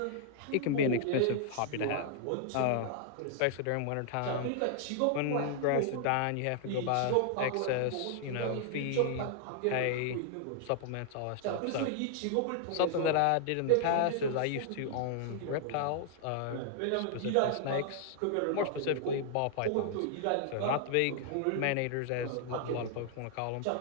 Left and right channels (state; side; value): different; both; correlation -0.01